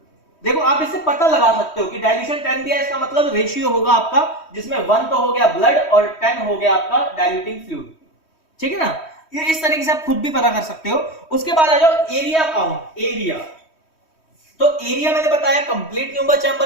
देखो आप इससे पता लगा सकते हो कि डाइल्यूशन 10 दिया, इसका मतलब रेशियो होगा आपका, जिसमें 1 तो हो गया ब्लड और 10 हो गया आपका डाइल्यूटिंग फ्लूइड, ठीक है ना। ये इस तरीके से आप खुद भी पता कर सकते हो। उसके बाद आ जाओ एरिया काउंट। एरिया तो एरिया मैंने बताया कंप्लीट न्यूमेंबर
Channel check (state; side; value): late; right; 3.1 ms